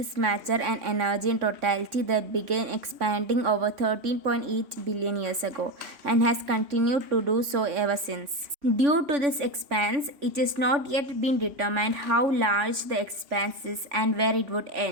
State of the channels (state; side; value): late; left; 3.5 ms